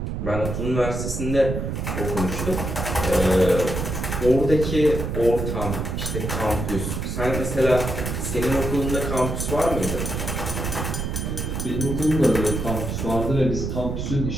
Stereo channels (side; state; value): right; noise; rumble, 3 dB below the sound